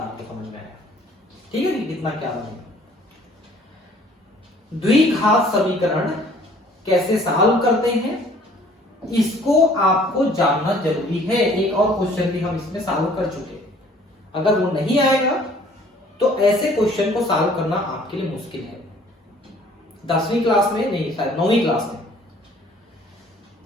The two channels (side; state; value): both; normal; correlation 0.56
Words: समझ में आया, ठीक है। कितना क्या बनेगा। द्विघात समीकरण कैसे सॉल्व करते हैं इसको आपको जानना जरूरी है। एक और क्वेश्चन भी हम इसमें सॉल्व कर चुके, अगर वो नहीं आएगा तो ऐसे क्वेश्चन को सॉल्व करना आपके लिए मुश्किल है। 10वीं क्लास में नहीं, शायद 9वीं